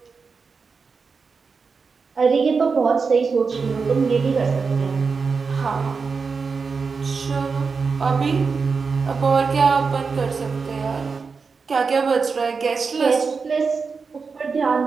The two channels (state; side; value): quieter; left; 5.0 dB